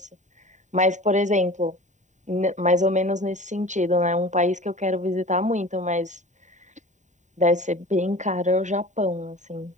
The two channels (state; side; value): late; left; 0.35 ms